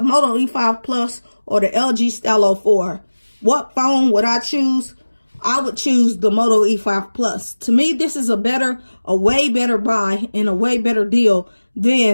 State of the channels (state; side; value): inverted; both; correlation -1.00